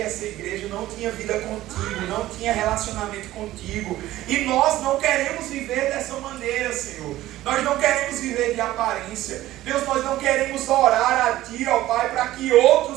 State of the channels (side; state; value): left; quieter; 15.3 dB